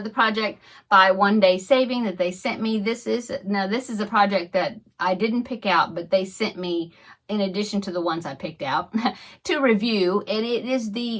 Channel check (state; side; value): identical; both; correlation 1.00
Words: project by One Day Saving that they sent me. This is a project that I didn't pick out, but they sent me in addition to the ones I picked out to review. And it is